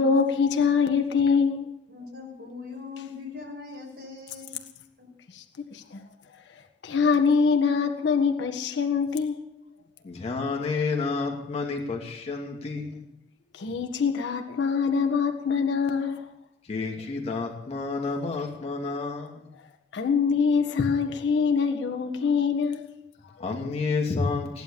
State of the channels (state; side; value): quieter; right; 5.0 dB